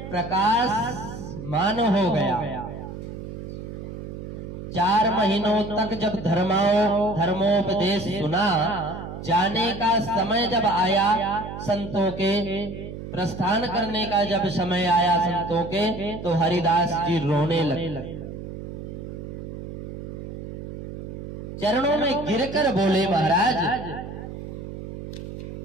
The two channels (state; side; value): noise; right; hum, 9 dB below the sound